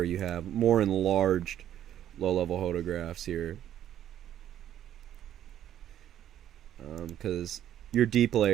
you have more enlarged low level photographs here, because your deep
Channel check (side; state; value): left; quieter; 11.1 dB